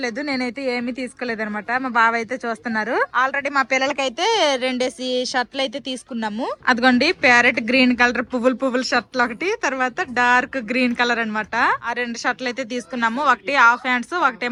నేనైతే ఏమీ తీసుకోలేదు అనమాట. మా బావ అయితే చూస్తున్నారు. ఆల్రెడీ మా పిల్లలకైతే 2 షర్ట్లు అయితే తీసుకున్నాము. అదిగోండి ప్యారెట్ గ్రీన్ కలర్ పువ్వులు షర్ట్లు ఒకటి, తర్వాత డార్క్ గ్రీన్ కలర్ అనమాట. ఆ 2 షర్ట్లు అయితే తీసుకున్నాము. ఒకటి హాఫ్ హ్యాండ్స్,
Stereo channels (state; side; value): identical; both; correlation 1.00